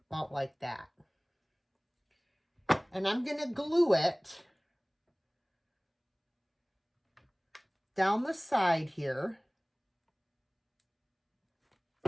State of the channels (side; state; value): both; identical; correlation 1.00